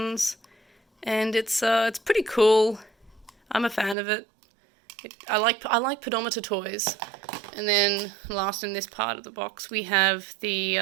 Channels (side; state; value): left; drops out; at 4.0 s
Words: And it's pretty cool. I'm a fan of it. I like pedometer toys. And then last in this part of the box we have the